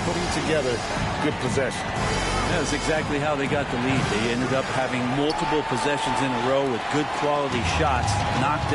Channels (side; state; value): both; identical; correlation 1.00